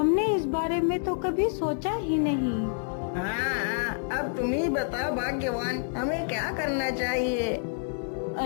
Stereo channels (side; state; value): right; silent; 59 dB below the other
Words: इस बारे में तो कभी सोचा ही नहीं। हाँ, अब तुम ही बताओ भाग्यवान, हमें क्या करना चाहिए?